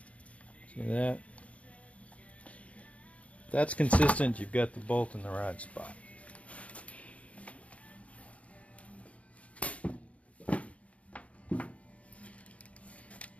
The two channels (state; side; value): late; right; 0.066 ms